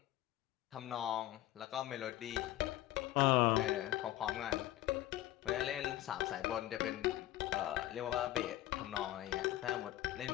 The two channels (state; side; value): quieter; right; 14.9 dB